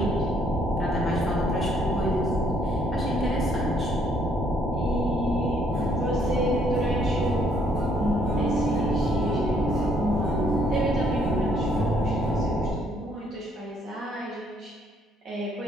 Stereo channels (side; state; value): both; normal; correlation 0.67